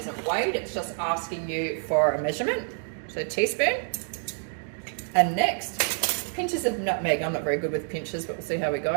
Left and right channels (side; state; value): left; silent; 60 dB below the other